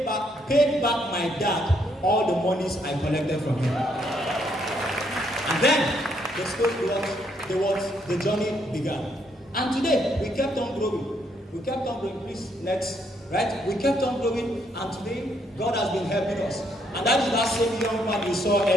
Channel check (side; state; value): both; normal; correlation 0.72